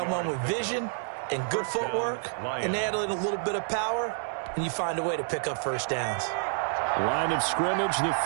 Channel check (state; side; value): silent; left; 59 dB below the other